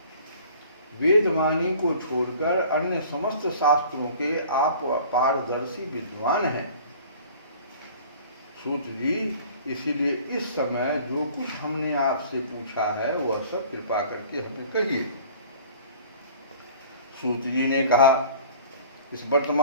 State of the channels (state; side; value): inverted; both; correlation -0.47